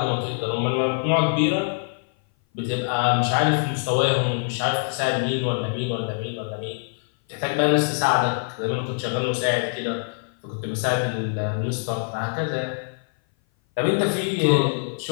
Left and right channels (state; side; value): silent; right; 57 dB below the other